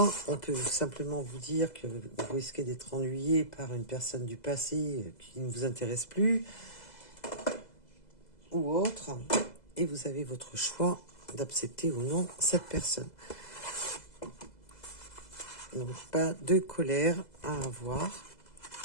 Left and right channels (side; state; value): right; late; 2.0 ms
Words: On peut simplement vous dire que vous risquez d'être ennuyé par une personne du passé qui ne vous intéresse plus ou autre. Et vous avez votre choix d'accepter ou non cette personne. Donc, pas de colère à avoir.